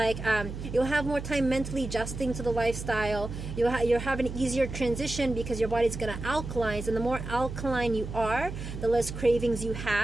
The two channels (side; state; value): right; noise; hum, 8 dB below the sound